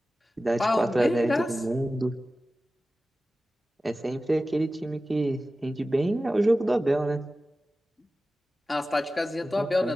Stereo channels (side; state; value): both; normal; correlation 0.95